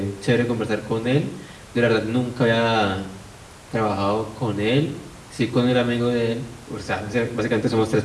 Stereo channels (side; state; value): both; identical; correlation 1.00